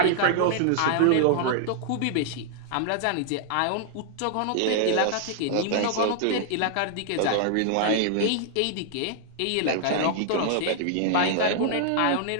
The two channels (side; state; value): both; different; correlation -0.01